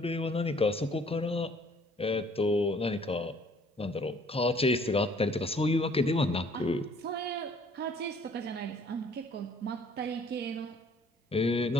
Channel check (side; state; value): both; normal; correlation 0.58